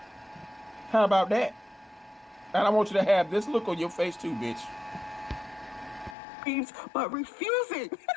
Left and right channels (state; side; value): drops out; right; at 6.2 s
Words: How about that? And I want you to have this look on your face too, bitch. But refusing